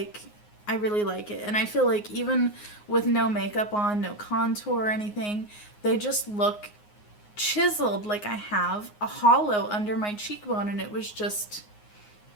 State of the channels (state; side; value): late; right; 9.6 ms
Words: I really like it. And I feel like even with no makeup on, no contour or anything, they just look chiseled, like I have a hollow under my cheekbone. And it was just